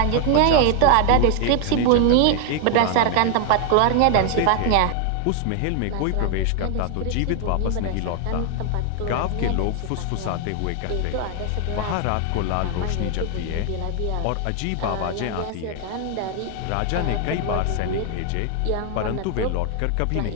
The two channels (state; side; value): different; both; correlation 0.00